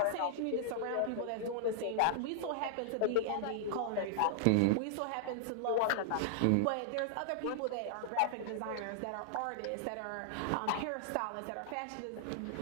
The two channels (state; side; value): different; both; correlation -0.01